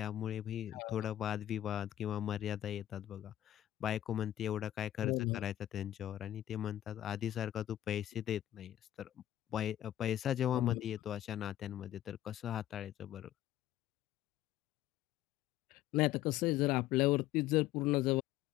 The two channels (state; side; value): quieter; right; 12.9 dB